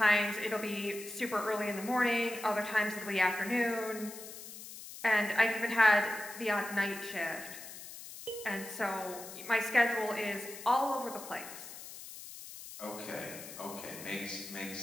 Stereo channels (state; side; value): noise; left; hiss, 13 dB below the sound